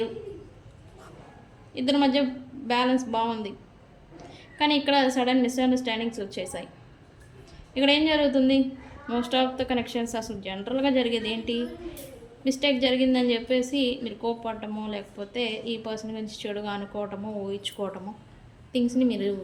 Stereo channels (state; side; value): identical; both; correlation 1.00